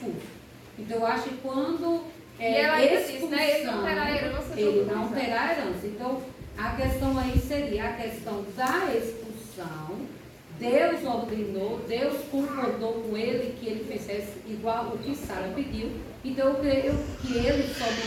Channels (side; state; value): both; identical; correlation 1.00